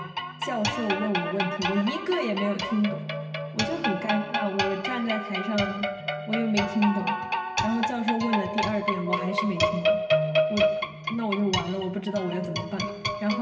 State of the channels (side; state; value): both; identical; correlation 1.00